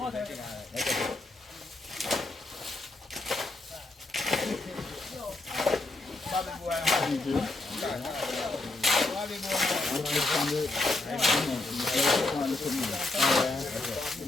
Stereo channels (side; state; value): right; quieter; 3.0 dB